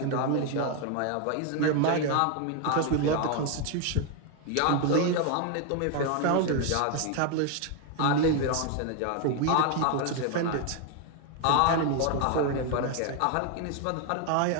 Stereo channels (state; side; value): different; both; correlation 0.01